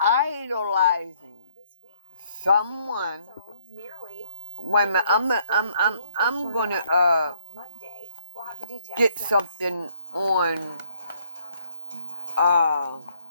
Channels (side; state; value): both; inverted; correlation -0.66